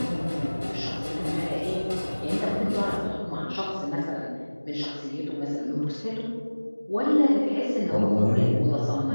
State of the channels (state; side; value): inverted; both; correlation -1.00